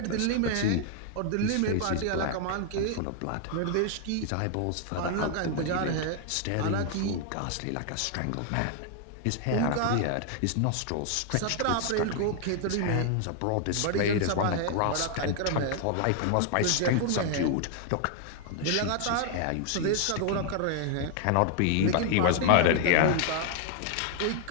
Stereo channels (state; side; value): different; both; correlation 0.00